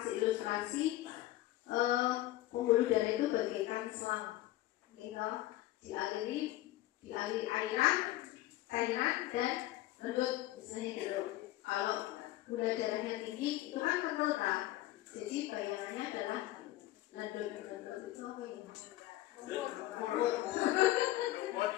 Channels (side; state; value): right; quieter; 16.1 dB